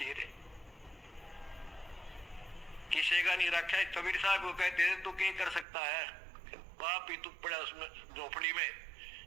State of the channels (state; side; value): drops out; left; at 5.7 s